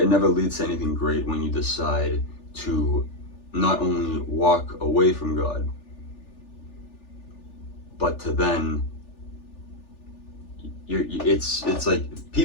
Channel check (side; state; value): right; late; 3.4 ms